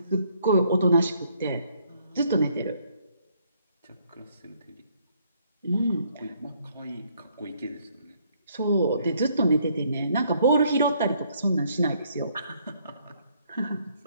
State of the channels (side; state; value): both; inverted; correlation -0.67